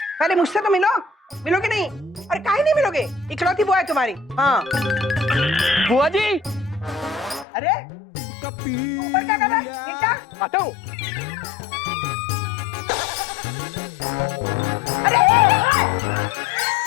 पहले मुझसे तो मिलो। मिलोगे नहीं? अरे काहे नहीं मिलोगे? इकलौती बुआ है तुम्हारी। हाँ। बुआ जी, अरे ऊपर क्या कर रहा है? नीचे आता हूँ। अरे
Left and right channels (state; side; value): drops out; right; at 7.5 s